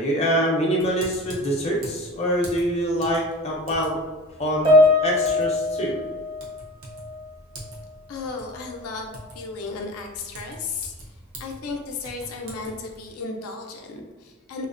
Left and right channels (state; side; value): normal; both; correlation 0.35